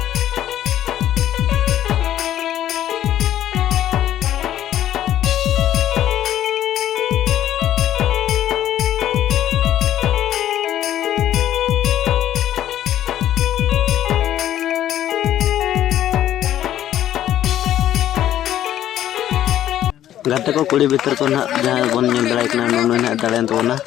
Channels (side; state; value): right; quieter; 11.9 dB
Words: गाते को कुड़ी भीतर को ना जहाँ बन नेल दड़ा कना नुनु ना दड़ेन तबना